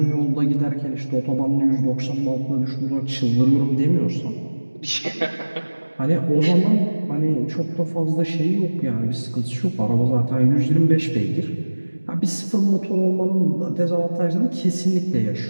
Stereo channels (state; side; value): inverted; both; correlation -1.00